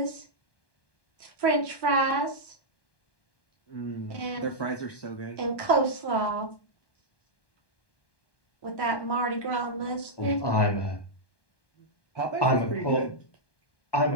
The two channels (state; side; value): late; right; 1.2 ms